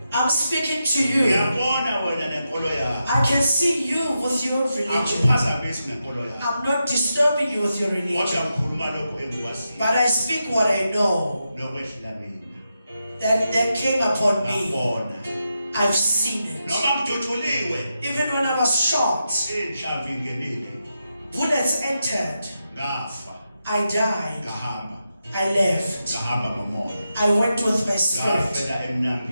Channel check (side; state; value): both; inverted; correlation -0.87